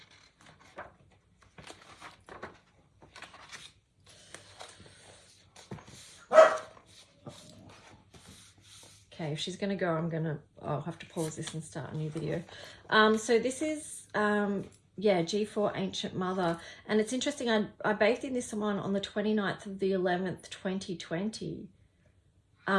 Okay, if she's going to go, I'll have to pause this and start a new video. So this is, yeah, G4 Ancient Mother. And it's interesting, I bathed in this one on the 29th of the 11th, 2020.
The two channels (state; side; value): identical; both; correlation 1.00